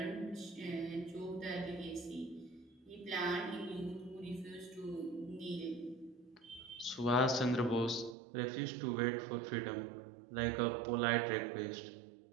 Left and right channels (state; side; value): drops out; left; at 8.2 s